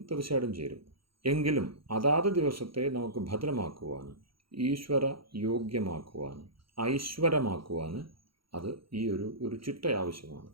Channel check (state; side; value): late; left; 0.74 ms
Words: തീർച്ചയായിട്ടും ചേരും. എങ്കിലും അതാത് ദിവസത്തെ നമുക്ക് ഭദ്രമാക്കുവാൻ, ഈശ്വര യോഗ്യമാക്കുവാൻ, ഐശ്വര്യമാക്കുവാൻ അത് ഈ ഒരു ചിട്ട ആവശ്യമാണ്.